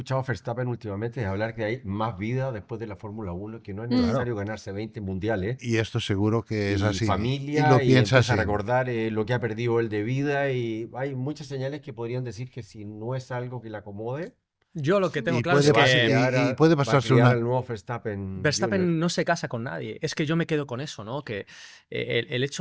a Verstappen últimamente es hablar que hay más vida después de la Fórmula 1, que no es Claro. necesario ganarse 20 mundiales. Y esto seguro que es Y así. familia, y lo y piensa empieza así. a recordar lo que ha perdido él de vida, y hay muchas señales que podrían decir que si no es algo que le acomode, Yo lo que tengo Y claro es puede va a pasar- que criar y puede va a pasarse criar una- al nuevo Verstappen. Verstappen Jr. no se casa con nadie. Es que yo me quedo con eso, ¿no? Que el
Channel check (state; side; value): identical; both; correlation 1.00